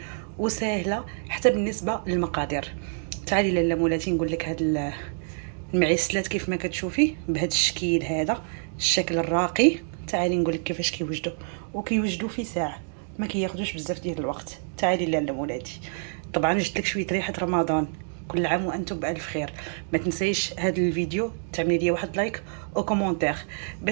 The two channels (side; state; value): left; silent; digital silence